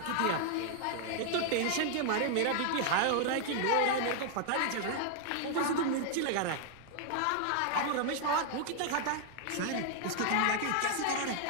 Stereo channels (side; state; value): both; different; correlation 0.00